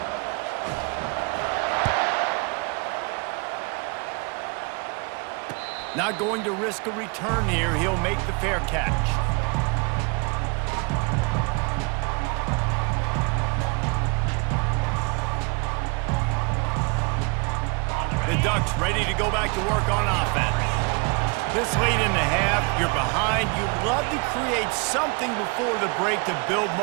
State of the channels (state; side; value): quieter; left; 31.9 dB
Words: Not going to risk a return here. He'll make the fair catch. The Ducks ready to go back to work on offense. This late in the half, you're behind. You'd love to create something before the break to build